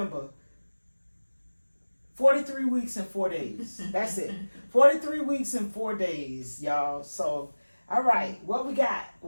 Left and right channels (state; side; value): inverted; both; correlation -1.00